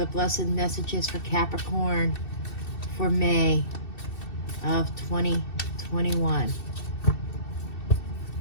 blessed messages for Capricorn for May of 2021?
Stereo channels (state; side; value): late; right; 2.7 ms